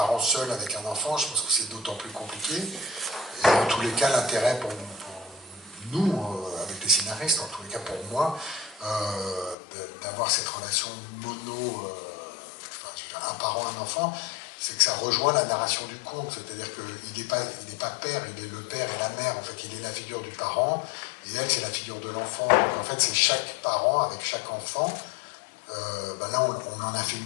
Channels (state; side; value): drops out; right; at 9.6 s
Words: seul avec un enfant, je pense que c'est d'autant plus compliqué. Et en tous les cas, l'intérêt pour nous, avec les scénaristes, en tous les cas pour moi, d'avoir cette relation mono, un parent, un enfant, c'est que ça rejoint la narration du conte, c'est-à-dire qu'il n'est pas père, il est le père et la mère, en fait, il est la figure du parent, et elle, c'est la figure de l'enfant. Donc en fait, c'est chaque parent avec chaque enfant. Là, on en a fait